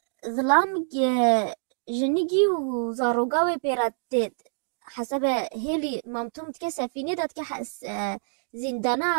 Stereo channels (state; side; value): silent; left; digital silence